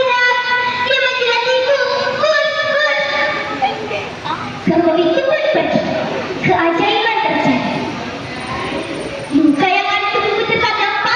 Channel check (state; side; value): identical; both; correlation 1.00